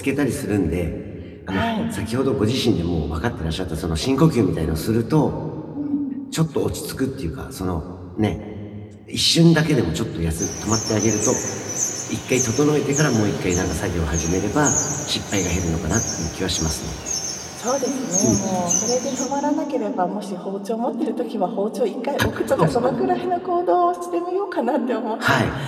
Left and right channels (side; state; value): both; identical; correlation 1.00